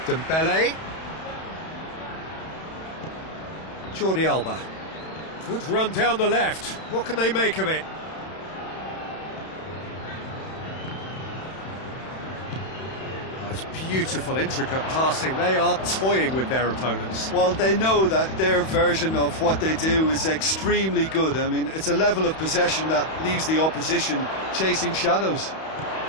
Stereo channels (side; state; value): right; late; 31 ms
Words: Dembele. Jordi Alba. Good run down the left. What can they make of it? It's beautiful, intricate passing. They are toying with their opponents. Well, they know that their version of what they do is extremely good. I mean, it's a level of possession that leaves the opposition chasing shadows.